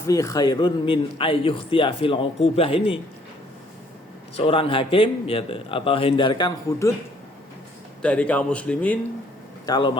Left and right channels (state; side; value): normal; both; correlation 0.63